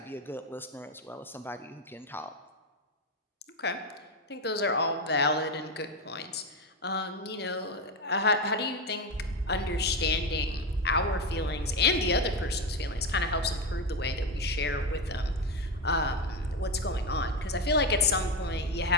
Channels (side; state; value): both; normal; correlation 0.14